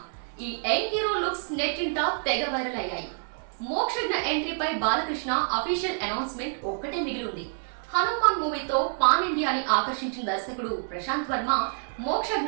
ఈ యంగ్ హీరో లుక్స్ నెట్టింట తెగ వైరల్ అయ్యాయి. మోక్షజ్ఞ ఎంట్రీపై బాలకృష్ణ అఫీషియల్ అనౌన్స్మెంట్ ఒక్కటే మిగిలి ఉంది. హనుమాన్ మూవీతో పాన్ ఇండియాని ఆకర్షించిన దర్శకుడు ప్రశాంత్ వర్మ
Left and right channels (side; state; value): left; silent; digital silence